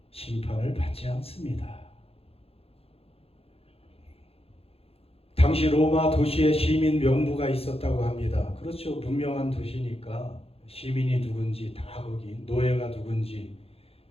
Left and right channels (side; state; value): right; late; 0.28 ms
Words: 심판을 받지 않습니다. 당시 로마 도시에 시민 명부가 있었다고 합니다. 그렇죠. 문명한 도시니까 시민이 누군지 다 거기, 노예가 누군지